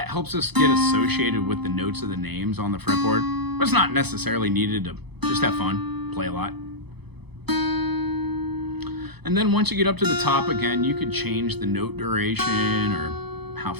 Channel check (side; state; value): left; late; 0.98 ms